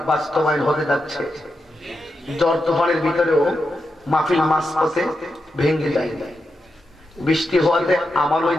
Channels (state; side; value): normal; both; correlation 0.87